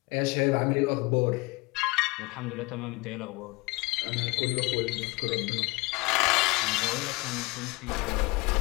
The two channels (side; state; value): right; quieter; 25.1 dB